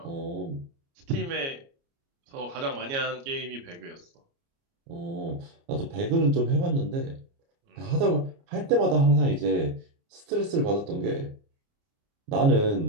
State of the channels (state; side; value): late; left; 29 ms